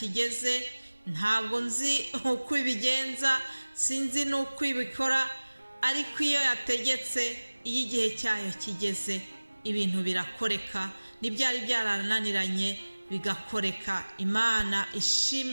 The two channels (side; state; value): both; inverted; correlation -1.00